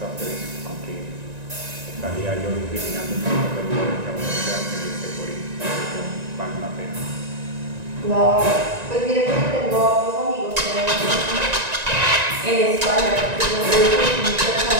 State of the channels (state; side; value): late; left; 1.9 ms